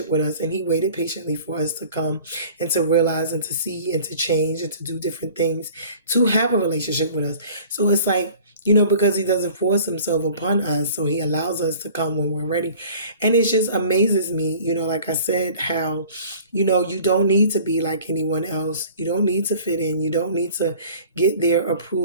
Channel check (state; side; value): inverted; both; correlation -0.47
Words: with us, and he waited patiently for us to come and to realize and to see and to change and to do different things to have a relationship with us. So it's like, because he doesn't force himself upon us, so he allows us to come when we're ready. And it just amazes me, like I said, how, you don't need to be like anyone else. You don't need to fit in. You don't need to get their